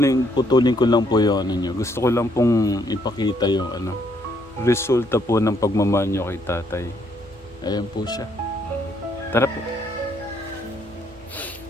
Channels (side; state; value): left; noise; rumble, 29 dB below the sound